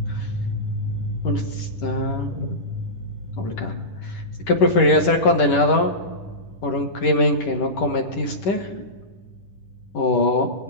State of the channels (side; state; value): right; late; 10 ms